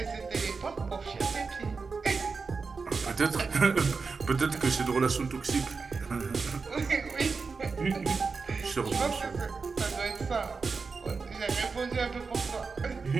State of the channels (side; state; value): left; quieter; 4.7 dB